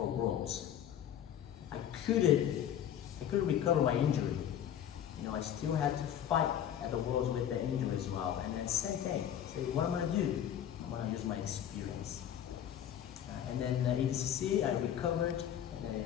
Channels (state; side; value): quieter; right; 10.1 dB